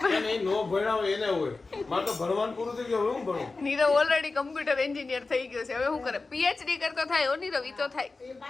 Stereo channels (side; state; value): right; quieter; 3.7 dB